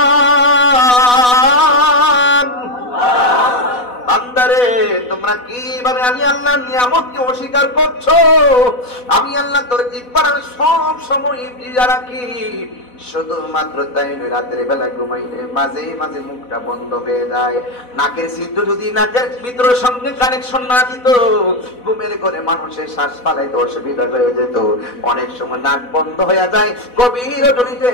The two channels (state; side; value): late; right; 4.1 ms